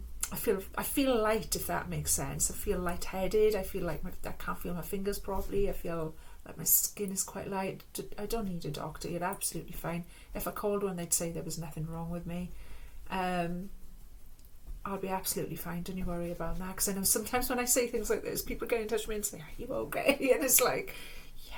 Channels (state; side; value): identical; both; correlation 1.00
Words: feel light, if that makes sense. I feel lightheaded. I feel like I can't feel my fingers properly. I feel like my skin is quite light. I don't need a doctor. You're absolutely fine. If I called one, they'd say there was nothing wrong with me. I'll be absolutely fine, don't you worry about that, because I know sometimes when I say things like this, people get in touch with me and say, are you okay? And it's like,